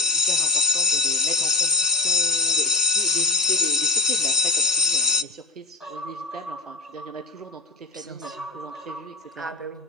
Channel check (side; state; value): right; quieter; 3.2 dB